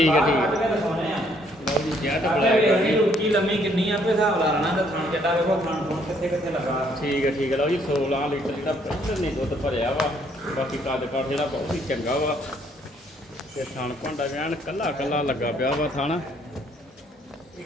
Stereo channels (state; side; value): normal; both; correlation 0.67